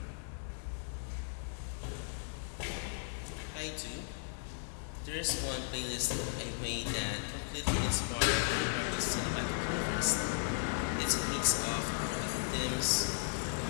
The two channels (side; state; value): right; silent; digital silence